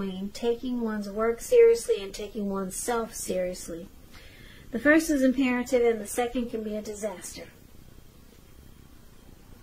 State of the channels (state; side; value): identical; both; correlation 1.00